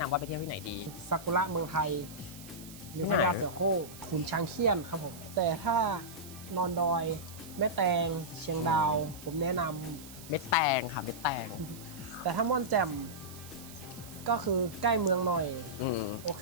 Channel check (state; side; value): noise; right; hiss, 16 dB below the sound